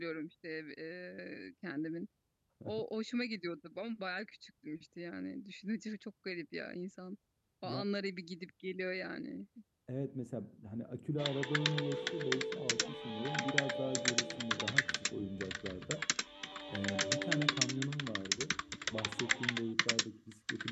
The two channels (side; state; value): both; identical; correlation 1.00